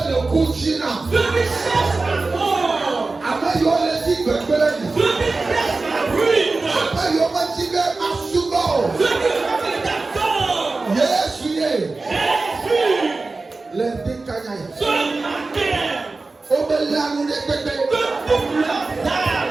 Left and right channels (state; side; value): quieter; left; 3.6 dB